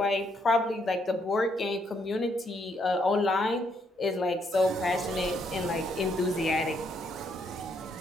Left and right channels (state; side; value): normal; both; correlation 0.73